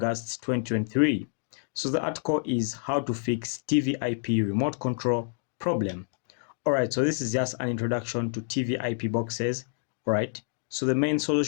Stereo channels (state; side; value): silent; right; digital silence